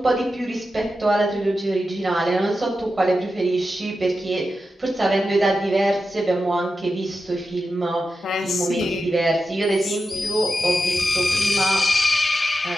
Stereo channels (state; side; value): normal; both; correlation 0.90